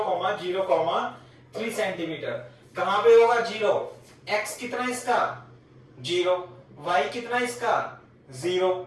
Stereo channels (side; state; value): both; identical; correlation 1.00